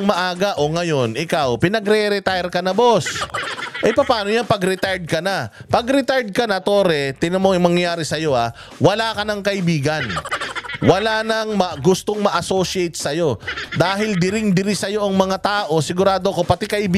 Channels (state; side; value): identical; both; correlation 1.00